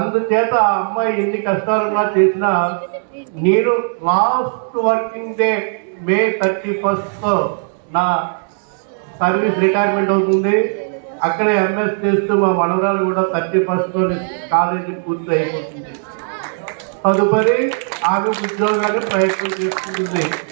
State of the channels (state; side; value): silent; left; digital silence